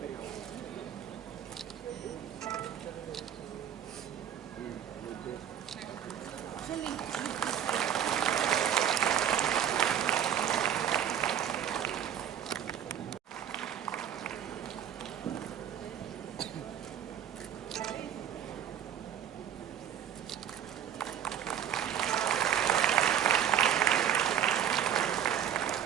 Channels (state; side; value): quieter; left; 9.6 dB